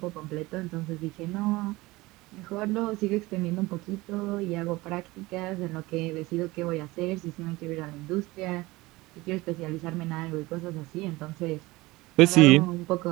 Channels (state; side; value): quieter; left; 20.7 dB